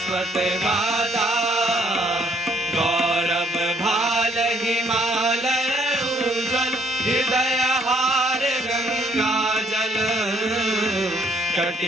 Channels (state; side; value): normal; both; correlation 0.66